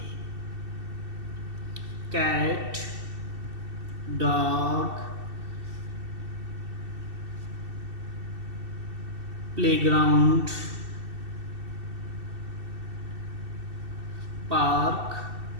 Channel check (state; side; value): late; left; 2.7 ms